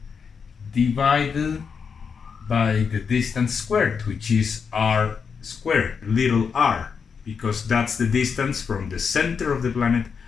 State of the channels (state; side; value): quieter; right; 6.1 dB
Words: divided by the distance squared, which is r squared, little r, because that's the distance from the center of the planet